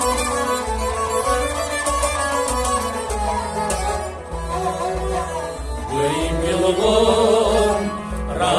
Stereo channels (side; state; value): both; identical; correlation 1.00